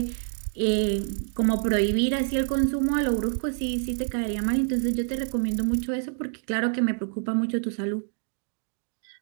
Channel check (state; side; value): silent; left; 56 dB below the other